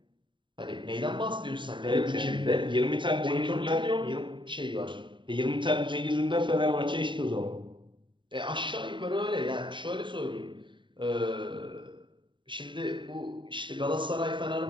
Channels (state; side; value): late; left; 0.23 ms